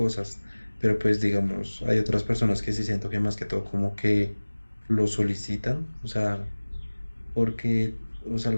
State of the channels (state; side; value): inverted; both; correlation -1.00